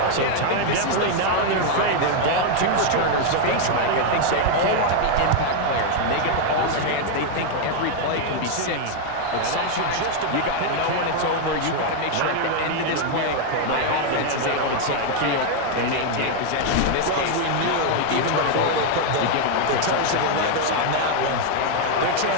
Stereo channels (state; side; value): different; both; correlation 0.00